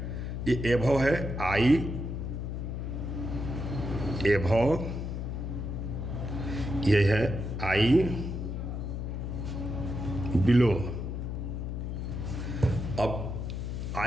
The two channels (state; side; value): noise; left; hum, 4 dB below the sound